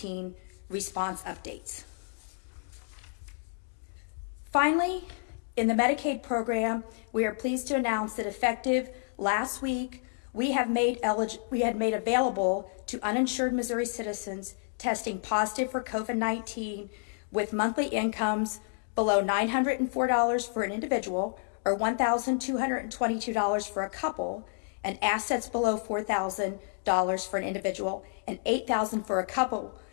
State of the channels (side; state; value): right; silent; digital silence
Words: response updates. Finally, in the Medicaid program, we are pleased to announce that effective last week, we had made available to uninsured Missouri citizens testing positive for COVID-19 with monthly incomes below $904 for an individual or $1,222 for a couple, and assets below $4,000 for an individual and $8,000 for a couple